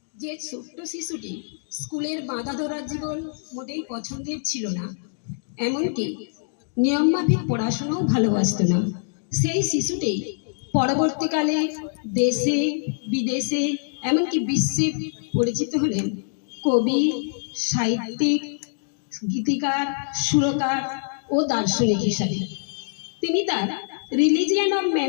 যে ছোট্ট শিশুটি স্কুলের বাঁধা ধরার জীবন মোটেই পছন্দের ছিল না, এমনকি নিয়মমাফিক পড়াশোনাও ভালোবাসতো না, সেই শিশুটি পরবর্তীকালে দেশে বিদেশে এমনকি বিশ্বে পরিচিত হলেন কবি, সাহিত্যিক, গীতিকার, সুরকার ও দার্শনিক হিসাবে। তিনি তার রিলিজিয়ান অফ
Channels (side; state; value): right; silent; digital silence